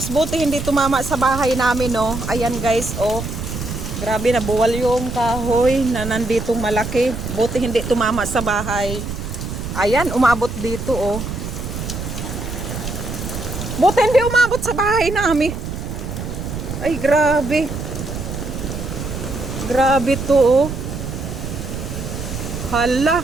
Buti hindi tumama sa bahay namin, no. Ayan guys, oh. Grabe, nabuwal yung kahoy na nanditong malaki. Buti hindi tumama sa bahay. Ayan, umabot dito, oh. Buti hindi umabot sa bahay namin. Ay, grabe. Grabe to, oh. Hala.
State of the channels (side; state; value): right; noise; rumble, 6 dB below the sound